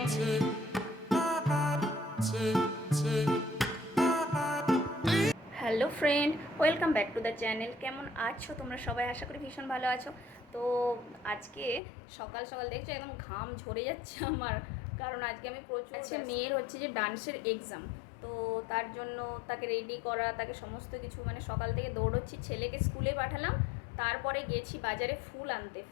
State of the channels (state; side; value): drops out; right; at 11.8 s